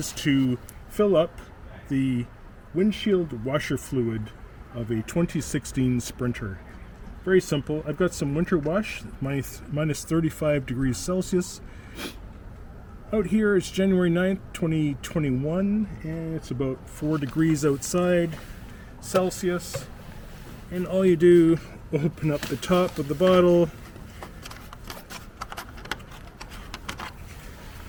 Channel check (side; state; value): both; identical; correlation 1.00